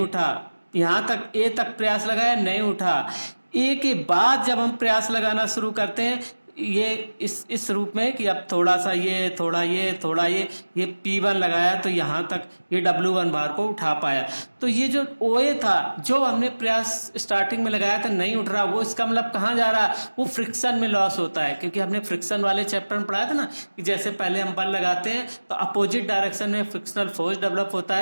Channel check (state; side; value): inverted; both; correlation -1.00